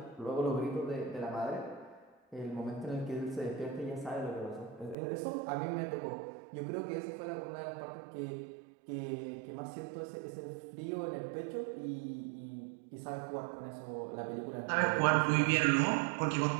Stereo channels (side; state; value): left; drops out; at 5.0 s